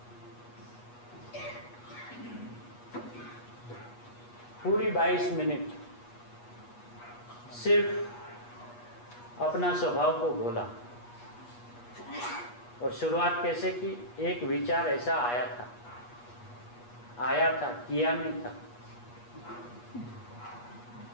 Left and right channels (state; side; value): late; right; 8.3 ms